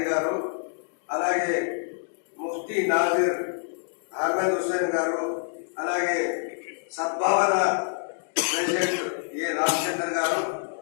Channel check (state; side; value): silent; right; digital silence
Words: గారు, అలాగే ముఫ్తీ నాజిర్ అహ్మద్ హుస్సేన్ గారు, అలాగే సద్భావన ప్రెసిడెంట్ ఏ రామచంద్ర గారు.